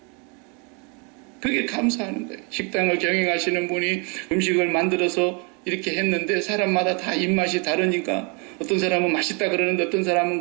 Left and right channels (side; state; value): left; quieter; 33.8 dB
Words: 그게 감사하는 거예요. 식당을 경영하시는 분이 음식을 만들어서 이렇게 했는데 사람마다 다 입맛이 다르니까 어떤 사람은 맛있다 그러는데 어떤 사람은